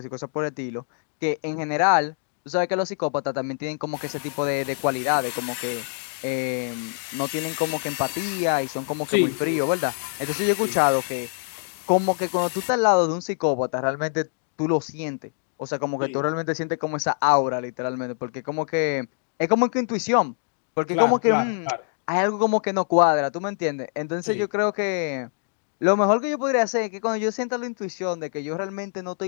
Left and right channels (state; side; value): silent; right; 62 dB below the other